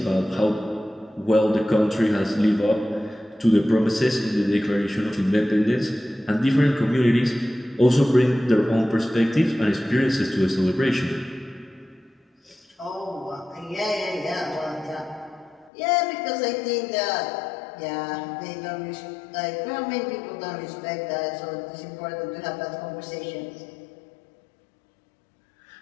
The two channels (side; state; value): right; drops out; at 15.7 s